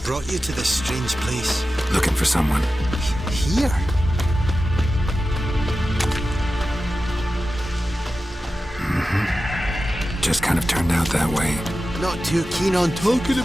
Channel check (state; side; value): normal; both; correlation 0.93